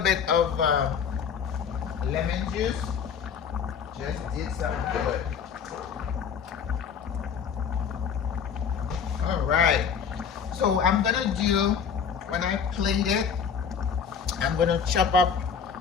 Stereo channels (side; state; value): right; quieter; 7.0 dB